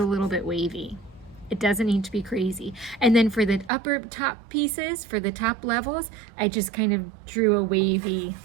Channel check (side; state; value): left; drops out; at 3.7 s